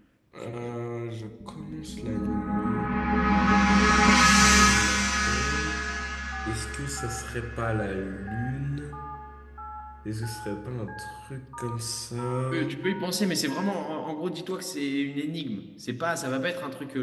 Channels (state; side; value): identical; both; correlation 1.00